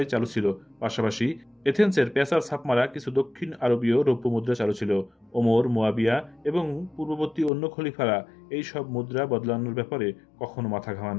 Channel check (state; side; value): drops out; right; at 7.5 s